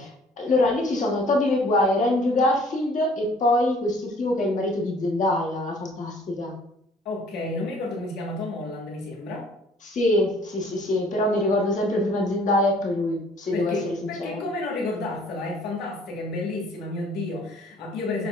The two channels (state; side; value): normal; both; correlation 0.56